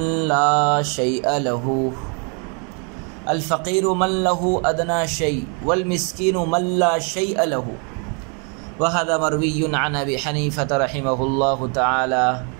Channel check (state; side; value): quieter; left; 37.1 dB